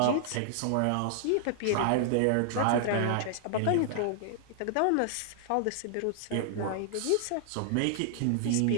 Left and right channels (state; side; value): different; both; correlation -0.01